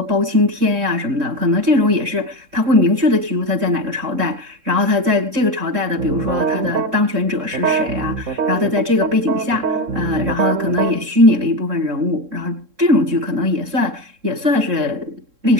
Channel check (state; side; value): late; left; 3.7 ms